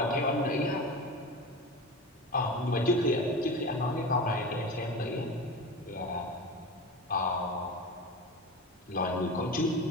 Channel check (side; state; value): both; normal; correlation 0.29